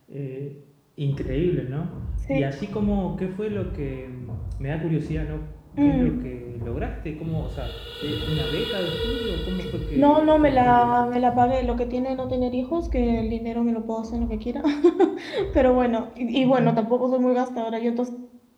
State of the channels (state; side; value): identical; both; correlation 1.00